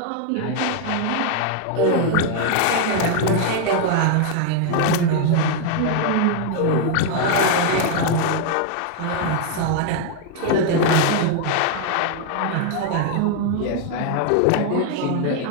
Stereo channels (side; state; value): both; different; correlation 0.00